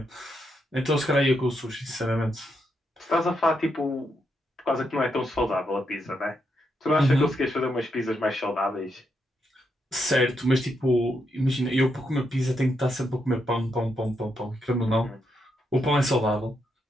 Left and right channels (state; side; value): normal; both; correlation 0.81